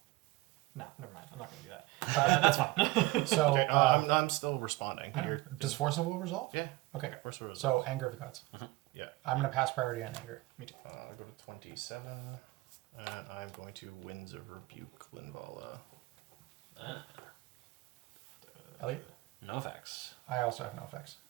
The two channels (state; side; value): quieter; left; 19.7 dB